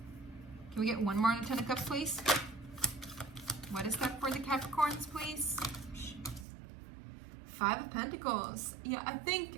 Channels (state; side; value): drops out; left; at 6.5 s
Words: Can we get one more on the Ten of Cups, please? What is that for the Capricorns, please? Five of Pentacles. Yeah, I